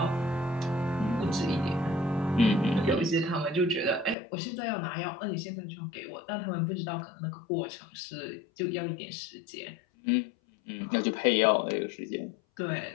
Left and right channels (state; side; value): drops out; right; at 4.2 s